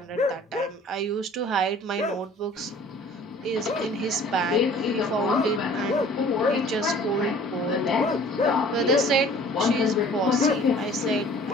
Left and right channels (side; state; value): both; normal; correlation 0.50